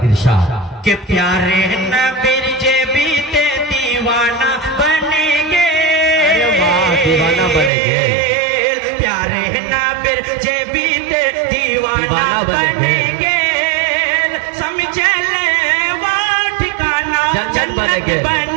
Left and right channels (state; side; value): drops out; left; at 7.7 s